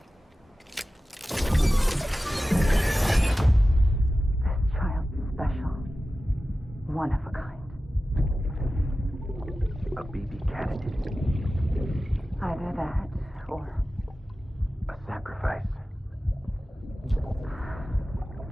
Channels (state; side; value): normal; both; correlation 0.95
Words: Child special. One of a kind. A BB candidate. Either that, or A sacrifice.